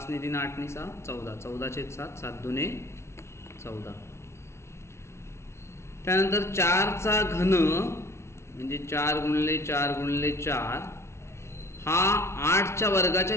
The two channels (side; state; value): right; late; 0.13 ms